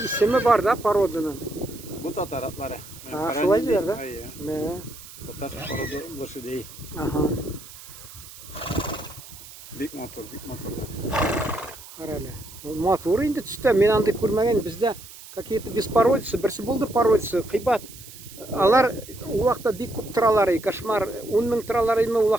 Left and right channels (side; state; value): right; noise; hiss, 17 dB below the sound